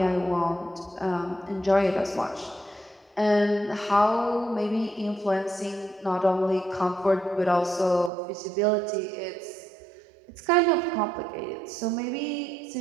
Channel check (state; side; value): drops out; left; at 8.1 s